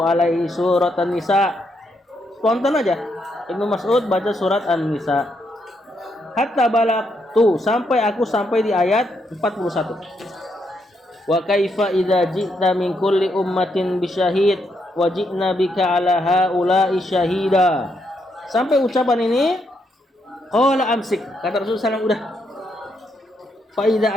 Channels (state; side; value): normal; both; correlation 0.78